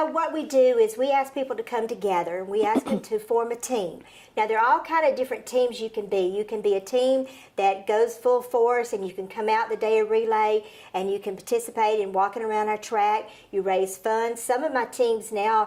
what we do is we ask people to come together, and we ask them to form a team. Now, there are all kind of different teams you can be. You can be a team that goes full force, and you can come out the day of Relay, and you can participate in walking around our track. You raise funds. Some of my teams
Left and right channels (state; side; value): identical; both; correlation 1.00